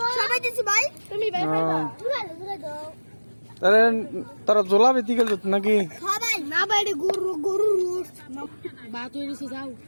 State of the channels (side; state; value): both; inverted; correlation -1.00